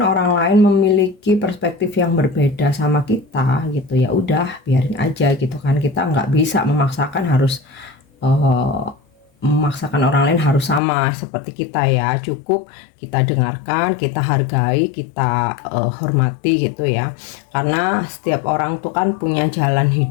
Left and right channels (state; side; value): drops out; right; at 10.8 s